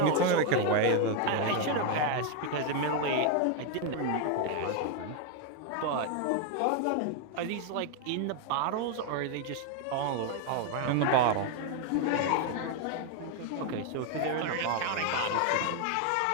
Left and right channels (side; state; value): both; different; correlation 0.00